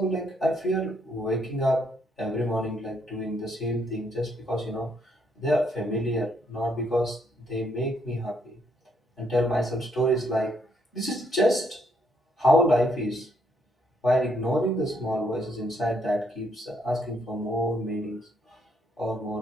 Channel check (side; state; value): both; normal; correlation 0.72